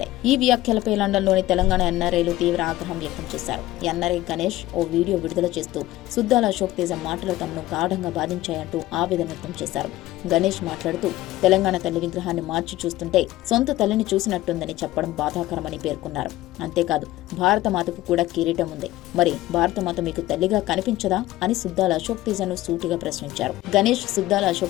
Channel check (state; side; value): quieter; right; 16.2 dB